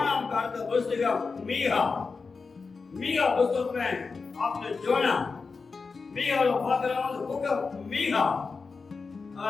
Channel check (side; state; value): right; quieter; 4.6 dB